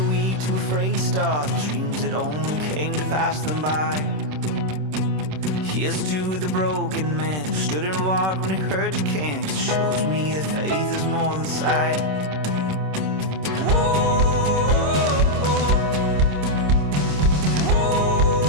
weak, too afraid to start, the dreams that only came to pass them by. Here's to the broken man who stood and walked when he heard you can, 'cause it shows me that faith is more than sight.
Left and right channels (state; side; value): late; left; 26 ms